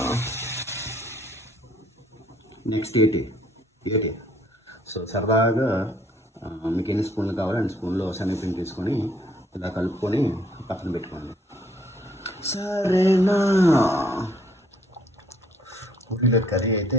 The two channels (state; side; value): normal; both; correlation 0.64